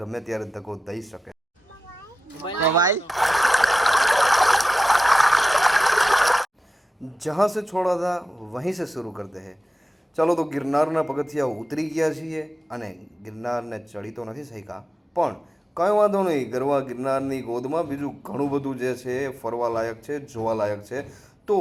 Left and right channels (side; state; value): both; normal; correlation 0.93